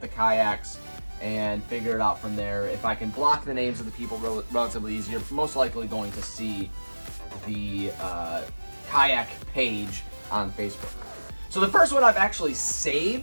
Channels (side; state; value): both; inverted; correlation -1.00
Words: the kayaks and figure it out from there. If I can block the names of the people relatively easy, you're most likely going to see the kayak page on Facebook. So the first one I've actually